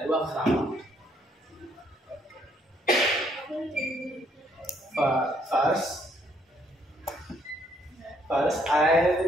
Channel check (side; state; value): both; normal; correlation 0.68